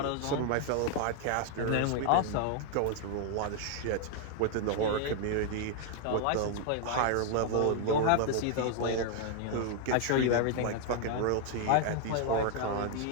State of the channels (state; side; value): different; both; correlation 0.00